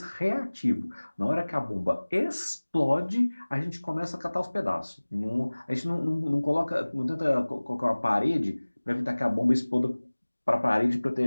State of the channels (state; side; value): inverted; both; correlation -1.00